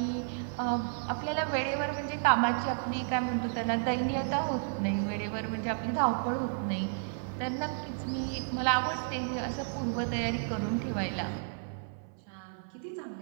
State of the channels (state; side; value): silent; left; 55 dB below the other